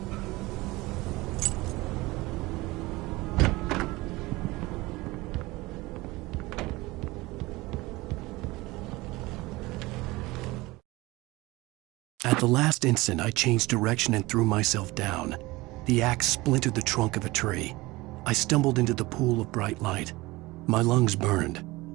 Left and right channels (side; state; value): left; quieter; 21.0 dB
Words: At the last instant, I changed direction and threw myself down. The axe splintered the trunk of a tree. I stumbled into the pool of bright light. My lungs burned.